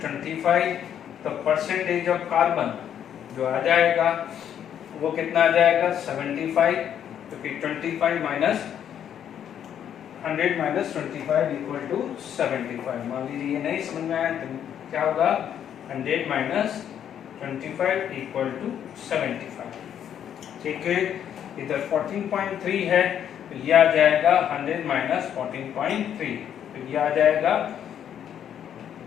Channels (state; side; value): quieter; right; 9.4 dB